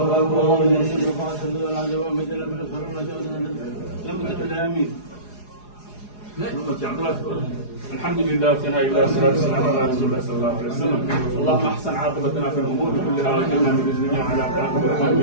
بالقبول. الحمد لله وثناء الله والصلاة والسلام على رسول الله صلى الله عليه وسلم. اللهم احسن عاقبتنا في الامور كلها واجعلنا من الدنيا على عقبة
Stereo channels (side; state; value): right; late; 4.8 ms